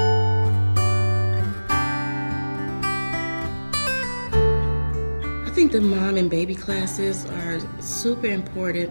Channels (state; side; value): inverted; both; correlation -1.00